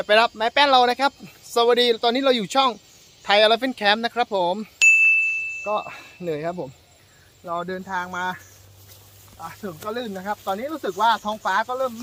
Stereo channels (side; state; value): both; identical; correlation 1.00